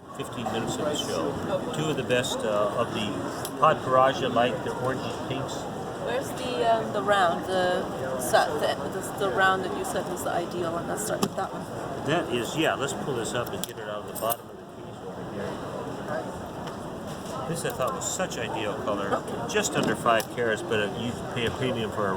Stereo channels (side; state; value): both; identical; correlation 1.00